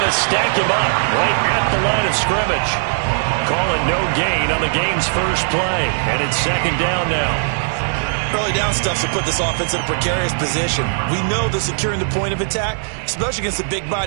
to stack him up right at the line of scrimmage. Call it no gain on the game's first play. And it's 2nd down now. Early down stuff to put this offense in a precarious position. We know that securing the point of attack, especially against the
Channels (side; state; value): left; silent; digital silence